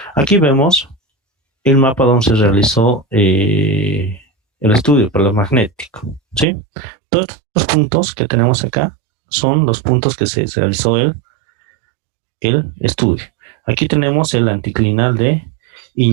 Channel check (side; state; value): left; drops out; at 6.5 s